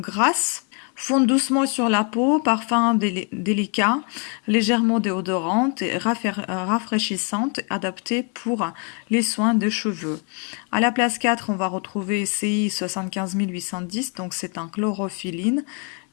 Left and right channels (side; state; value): right; quieter; 37.4 dB